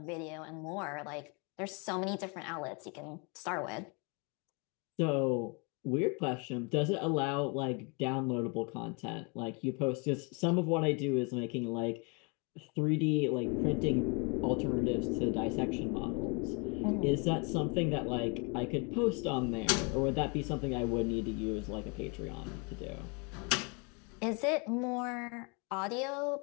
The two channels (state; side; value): quieter; right; 32.9 dB